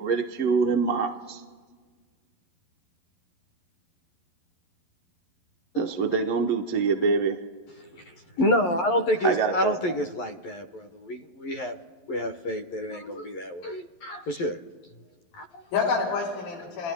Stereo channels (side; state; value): right; late; 11 ms